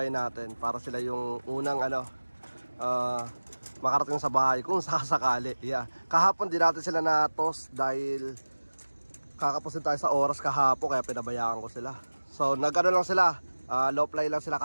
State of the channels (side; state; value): both; inverted; correlation -1.00